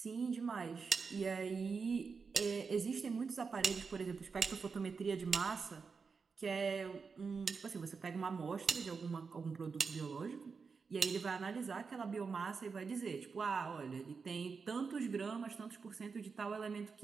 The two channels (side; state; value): left; quieter; 5.2 dB